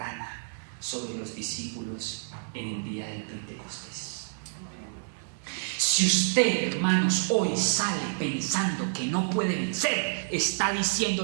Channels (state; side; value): silent; left; digital silence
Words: sobre los discípulos en el día del Pentecostés. Si usted, hermanos, hoy sale pensando que no puede vencer, está